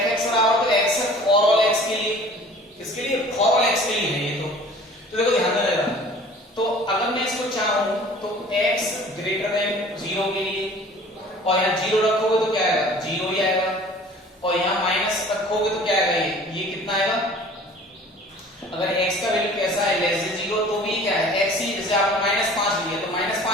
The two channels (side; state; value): both; normal; correlation 0.47